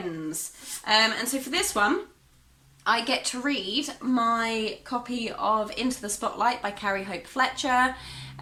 And so for this one, I get to read my copy of Into the Spotlight by Carrie Hope Fletcher.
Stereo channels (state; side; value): identical; both; correlation 1.00